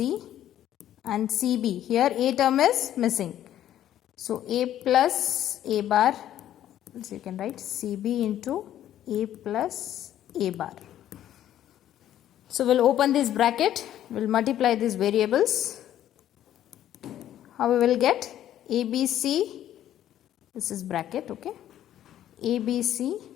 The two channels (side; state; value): right; quieter; 11.8 dB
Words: and CB. Here A term is missing. So A plus A bar, so you can write CB into A plus A bar. So we'll open this bracket, we'll multiply these variables. How we will get ABC, this is bracket, okay? ABC